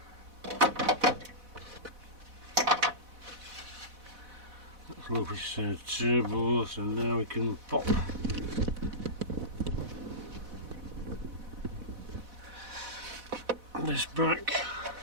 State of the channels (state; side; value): late; left; 4.1 ms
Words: Low pressure turbo, so now we can pop this back.